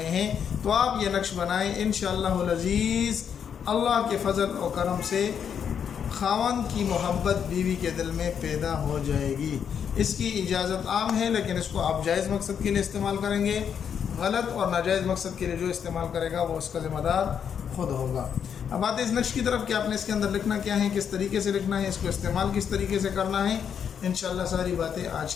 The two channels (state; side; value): quieter; right; 7.8 dB